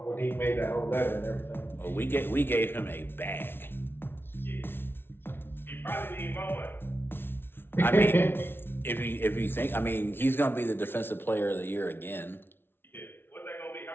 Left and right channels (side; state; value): right; late; 0.11 ms